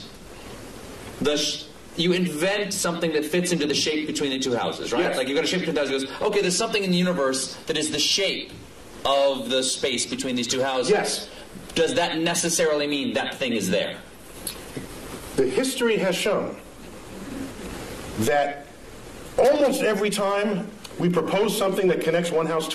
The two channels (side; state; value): both; identical; correlation 1.00